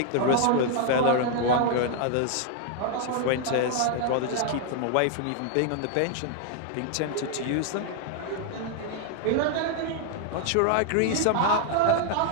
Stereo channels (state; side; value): different; both; correlation 0.00